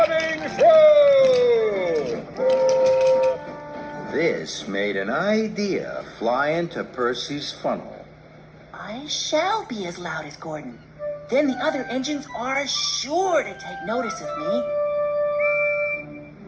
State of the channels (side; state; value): both; identical; correlation 1.00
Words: through! This made an idea fly into Percy's funnel. I shall be as loud as Gordon. Then the other engines are sure to take notice of me.